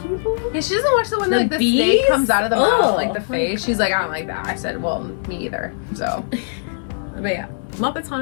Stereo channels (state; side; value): silent; right; 58 dB below the other